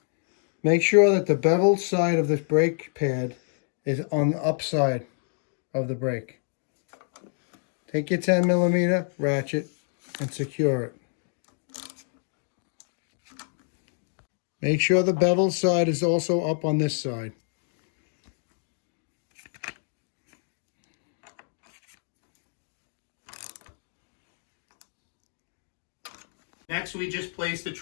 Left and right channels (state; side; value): silent; right; 59 dB below the other